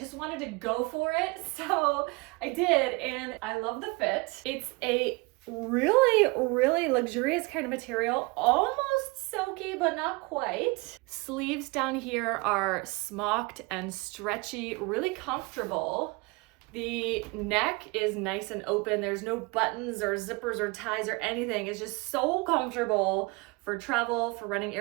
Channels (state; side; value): quieter; left; 26.7 dB